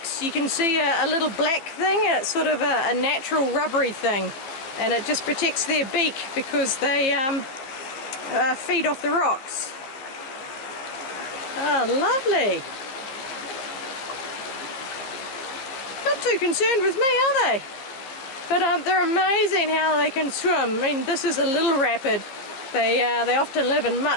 you can see a little black thing. It's sort of a natural rubbery thing. And it just protects their beak because they feed off the rocks. Oh, lovely. Not too concerned with me, are they? But they're amazing how they can swim. I mean, this is a little rapid. They often live in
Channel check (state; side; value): late; right; 15 ms